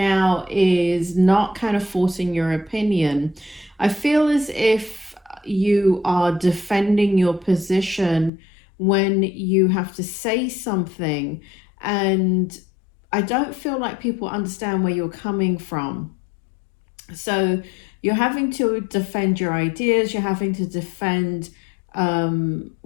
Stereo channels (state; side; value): drops out; right; at 8.3 s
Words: is not kind of forcing your opinion. I feel as if you are defending your position when you have to say something, and I don't feel like people understand where you're coming from. So you're having to defend your ideas, you're having to defend